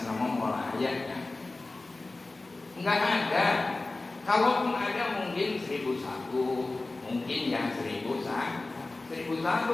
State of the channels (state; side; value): quieter; right; 3.2 dB